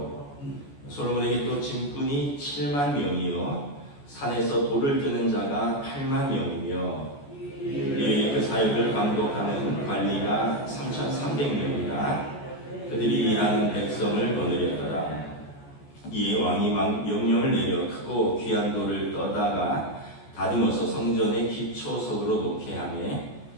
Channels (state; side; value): late; right; 14 ms